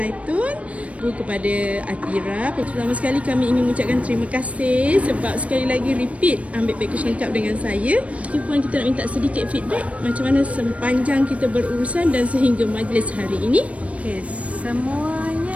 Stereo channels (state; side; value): late; left; 0.064 ms